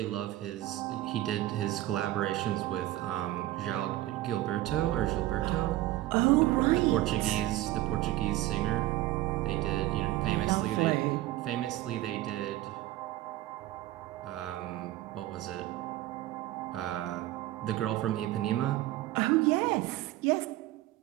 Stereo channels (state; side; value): quieter; left; 15.8 dB